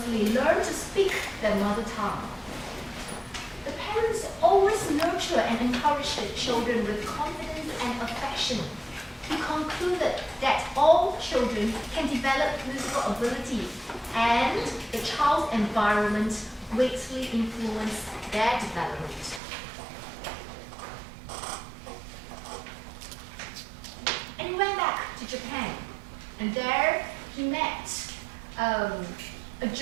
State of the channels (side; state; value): left; drops out; at 19.4 s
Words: learn to speak their mother tongue. The parents always nurture and encourage the children with confidence and affection. He concluded that all children can develop musical ability, and the child's environment greatly influence their development. And he went back to Japan, and there he met a